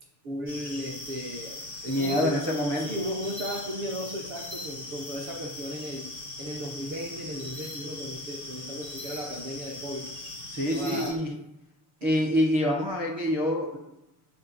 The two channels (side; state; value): left; late; 6.8 ms